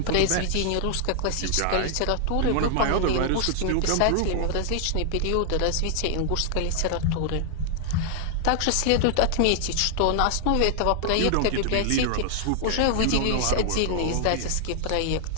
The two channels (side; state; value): both; different; correlation 0.00